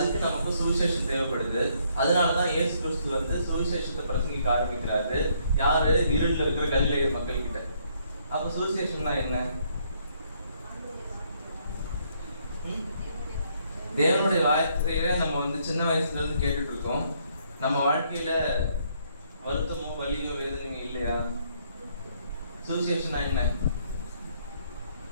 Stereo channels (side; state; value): both; inverted; correlation -0.69